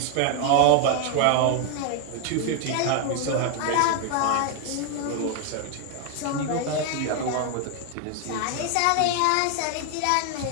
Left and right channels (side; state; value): both; different; correlation 0.01